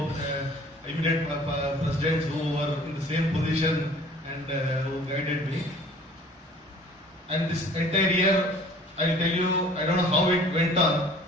immediate presidents who were in the same position and who guided me. And this entire year, I'll tell you, I don't know how it went on.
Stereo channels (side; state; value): both; normal; correlation 0.50